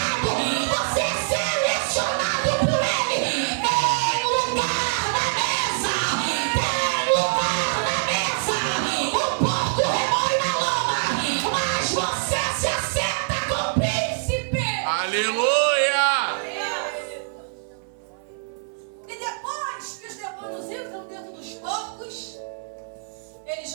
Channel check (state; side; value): silent; left; 56 dB below the other